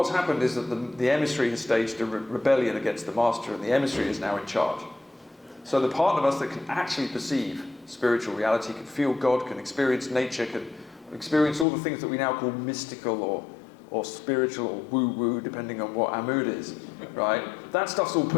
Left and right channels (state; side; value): drops out; right; at 11.7 s